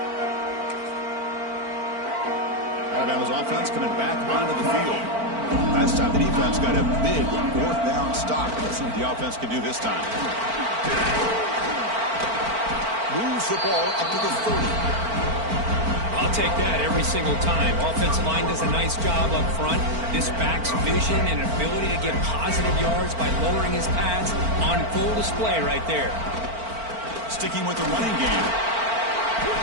Alabama's offense coming back onto the field. Last time the defense got a big 4th down stop. Let's see what the offense can do this time. Moves the ball up to the 30. I'll take that every single time. Offensive line does a nice job up front. This back's vision and ability to get positive yards by lowering his pads on full display right there. Sticking with the running game.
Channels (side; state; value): left; late; 4.4 ms